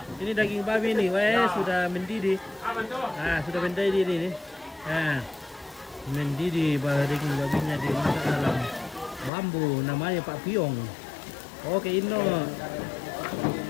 Ini daging babi nih, weh sudah mendidih. Nah, sudah mendidih ini. Nah, mendidih daging babinya dimasak dalam bambu, namanya Pak Piong. Oke, Ino.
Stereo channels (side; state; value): right; drops out; at 9.3 s